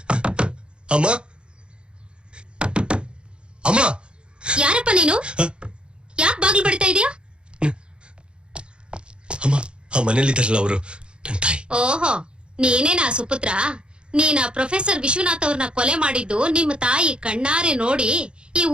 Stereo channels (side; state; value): left; late; 0.054 ms